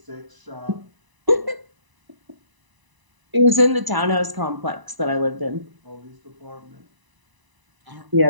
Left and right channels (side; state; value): left; late; 1.0 ms